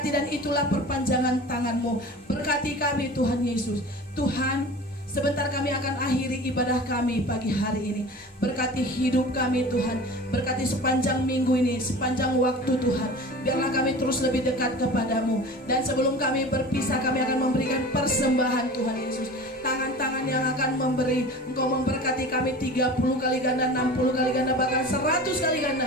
dan itulah perpanjangan tangan-Mu. Berkati kami Tuhan Yesus. Tuhan, sebentar kami akan akhiri ibadah kami pagi hari ini. Berkati hidup kami Tuhan. Berkati sepanjang minggu ini, sepanjang waktu Tuhan. Biarlah kami terus lebih dekat kepadamu. Dan sebelum kami berpisah, kami akan memberikan persembahan Tuhan Yesus. Tangan-tangan yang akan memberi, Engkau memberkati kami 30 kali ganda, 60 kali ganda, bahkan 100 kali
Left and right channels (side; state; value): both; normal; correlation 0.37